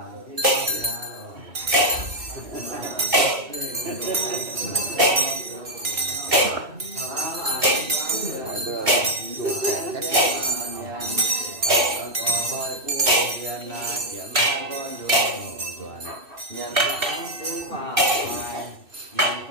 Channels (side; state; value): left; late; 2.7 ms